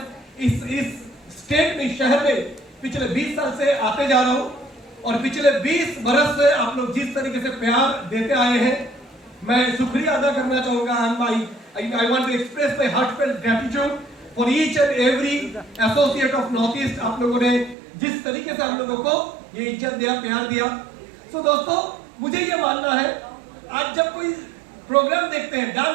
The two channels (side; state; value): left; drops out; at 17.8 s